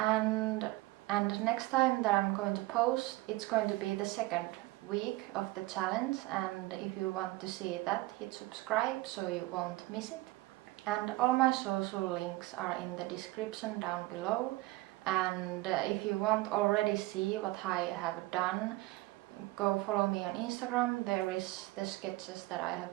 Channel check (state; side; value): quieter; left; 19.7 dB